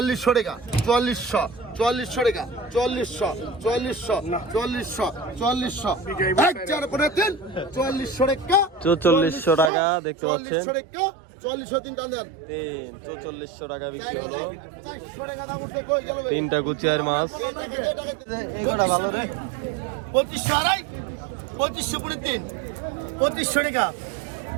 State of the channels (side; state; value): left; drops out; at 9.7 s